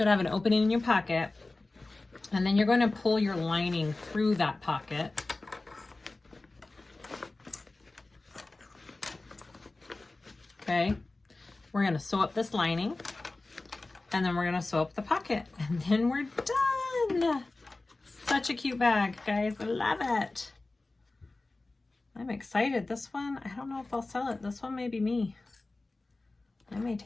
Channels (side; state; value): right; quieter; 3.2 dB